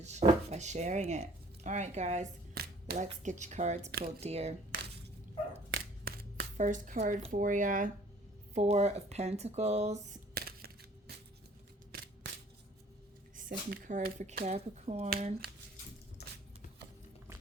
by sharing it. All right, guys, let's get your cards pulled, dear. First card for you, 4 of Pentacles. Second card for Capricorn.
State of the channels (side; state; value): both; normal; correlation 0.54